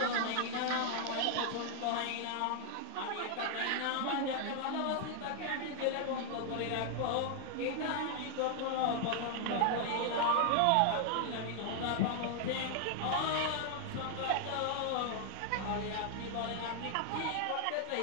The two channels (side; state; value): both; different; correlation 0.00